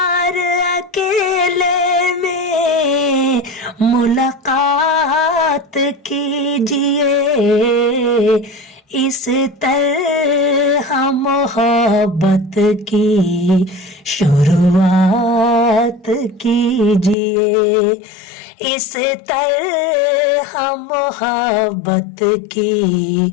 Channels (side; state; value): right; drops out; at 17.2 s